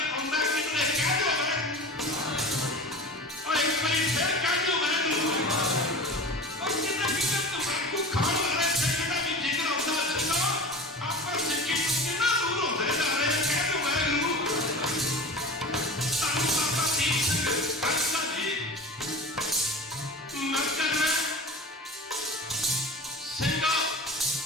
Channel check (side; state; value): both; normal; correlation 0.35